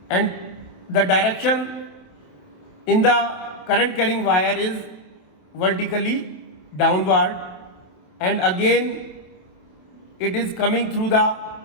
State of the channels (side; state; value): right; late; 27 ms